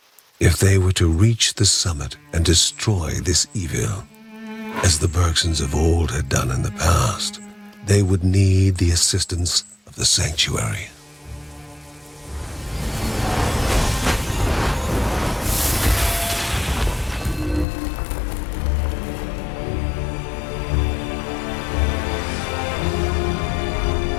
If they were to reach the summit and destroy this evil, as the Bergsons of old had done in the past, they would need the assistance of the sanctuary.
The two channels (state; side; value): drops out; right; at 17.7 s